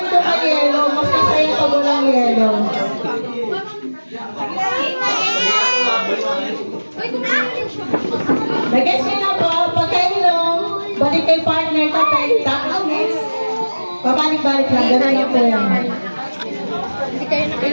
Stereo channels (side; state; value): both; inverted; correlation -1.00